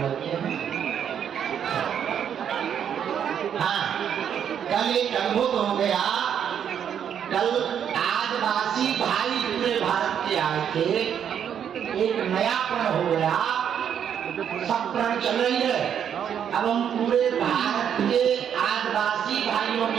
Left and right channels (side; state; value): left; quieter; 8.6 dB